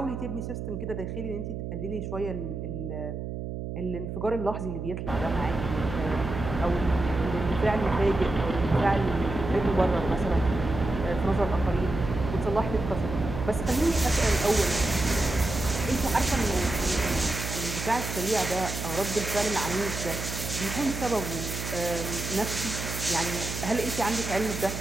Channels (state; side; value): noise; right; hum, 6 dB below the sound